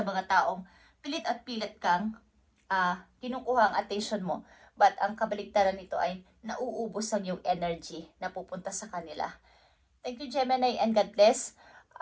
mga taong pilit at pilit kang kinukuha ang attention mo. But ang kabaligtaran nito ay nauubos ang yung energy na pupunta sa kanila. Thank you, Gemini, and God bless.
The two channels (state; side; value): identical; both; correlation 1.00